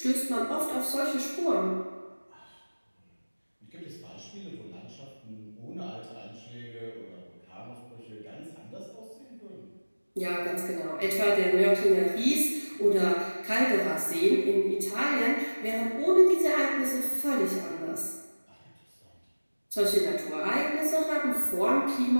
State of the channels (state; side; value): inverted; both; correlation -1.00